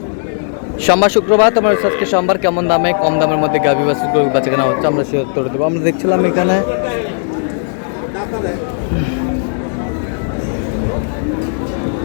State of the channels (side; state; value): right; silent; digital silence